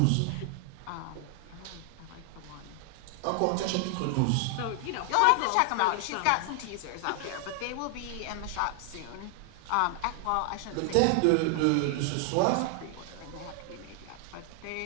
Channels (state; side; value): different; both; correlation 0.00